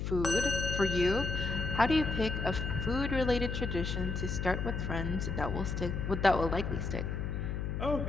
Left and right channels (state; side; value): noise; left; hum, 2 dB below the sound